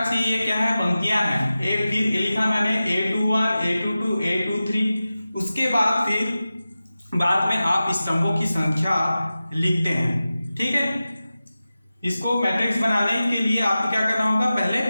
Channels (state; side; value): inverted; both; correlation -0.95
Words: से ये क्या है, पंक्तियां हैं। फिर लिखा मैंने A21, A22, A23, उसके बाद फिर बाद में आप स्तंभों की संख्या लिखते हैं, ठीक है। इसको मैट्रिक्स बनाने के लिए आपको क्या करना होगा, पहले